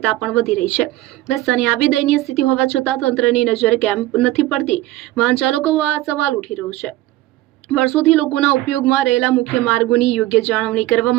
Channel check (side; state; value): left; quieter; 16.5 dB